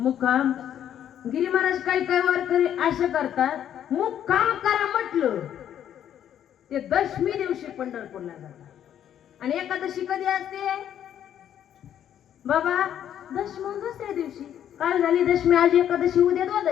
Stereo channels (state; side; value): quieter; right; 10.1 dB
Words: गिरी महाराज काही काही वारकरी असं करतात. मुक्काम करा म्हटलं ते दशमी दिवशी पंढरपूरला जातात. आणि एकादशी कधी असते बाबा? दशमी दुसऱ्या दिवशी. काल झाली दशमी, आज एकादशी, उद्या